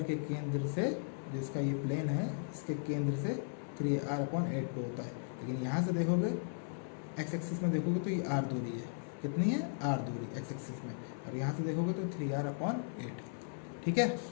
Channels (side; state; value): right; silent; 53 dB below the other